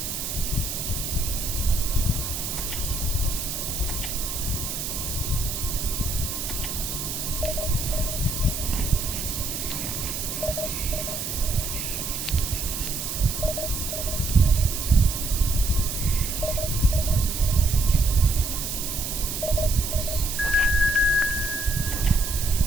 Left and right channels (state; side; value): noise; right; hiss, 4 dB below the sound